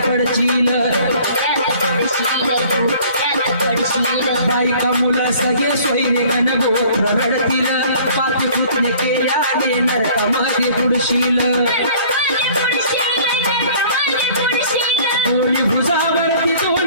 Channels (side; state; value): both; inverted; correlation -0.52